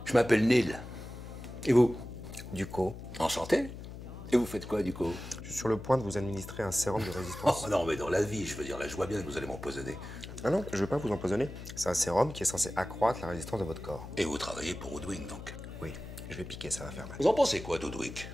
Je m'appelle Neil. Et vous? Ducos. Enchanté. Et vous faites quoi, Ducos? Je suis sur le point de vous administrer un sérum de résistance. Oh non, mais dans la vie, je veux dire, là, je vois bien que vous allez m'empoisonner. Ah non, je veux pas vous empoisonner. C'est un sérum qui est censé accroître la résistance de votre corps. Et vous travaillez pour Woodwing, donc? Oui, je vais piquer, ça va faire mal. Vous en pensez quoi d'Woodwick?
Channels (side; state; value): left; noise; hum, 11 dB below the sound